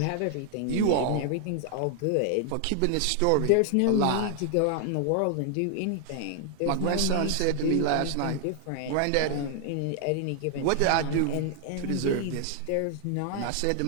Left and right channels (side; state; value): both; different; correlation 0.00